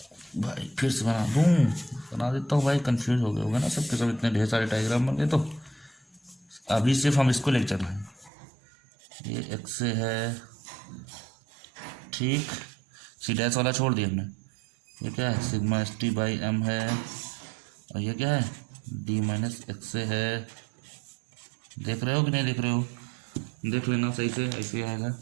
भाई, फिर से बना देता हूँ भाई, कंफ्यूज हो गए होगा ना सबके सब, इतने ढेर सारे डायग्राम बन गए, तो अभी सिर्फ हम इसको लेकर चल रहे हैं, ये एक्स से है, ठीक। सी डैश वाला छोड़ दिया हमने। ये क्या है, sigma S T by m है, और ये क्या है, डी माइनस एक्स से है। देख रहे हो कि नहीं देख रहे हो, देख लेना सही से, ऐसे आएगा।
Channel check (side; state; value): left; drops out; at 8.3 s